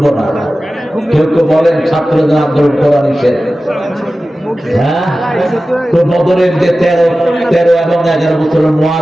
না। কেউ কেউ বলেন ছাত্রদের আন্দোলন করা নিষেধ। হ্যাঁ, তো বদরের যে 13 এবং 11 বছরের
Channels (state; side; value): normal; both; correlation 0.95